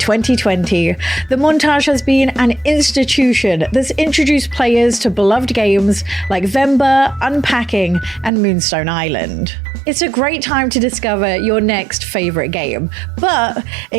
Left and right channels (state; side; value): drops out; left; at 8.3 s